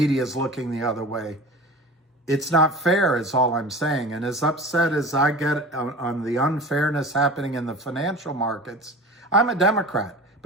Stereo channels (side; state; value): both; normal; correlation 0.36